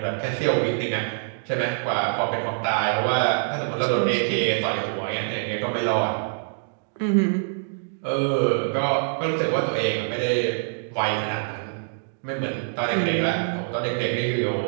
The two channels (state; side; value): silent; left; digital silence